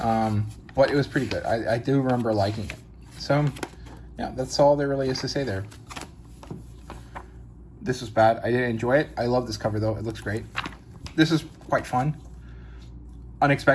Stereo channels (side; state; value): both; identical; correlation 1.00